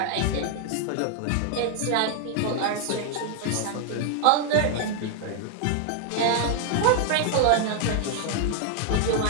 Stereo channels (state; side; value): different; both; correlation 0.00